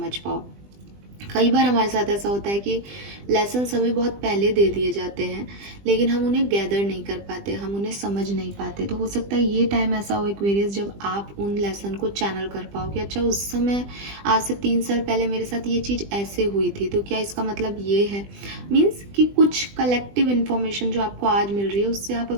पाओ। कई बार हमारे साथ ऐसा होता है कि लेसन्स हमें बहुत पहले दे दिए जाते हैं, लेकिन हम उन्हें गैदर नहीं कर पाते, हम उन्हें समझ नहीं पाते। तो हो सकता है ये टाइम ऐसा हो एक्वेरियस जब आप उन लेसन को चैनल कर पाओ कि अच्छा, उस समय आज से 3 साल पहले मेरे साथ ये चीज़ ऐसे हुई थी, तो क्या इसका मतलब ये है। मीन्स कि कुछ कलेक्टिव इन्फॉर्मेशन जो आपको आज मिल रही है, उससे आप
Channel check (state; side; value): late; left; 20 ms